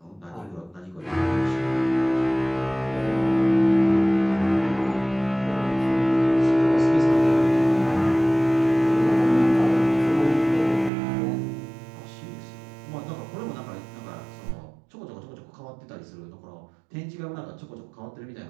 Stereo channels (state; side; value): drops out; left; at 10.9 s